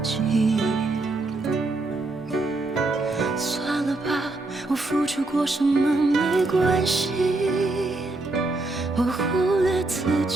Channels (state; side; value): quieter; left; 3.0 dB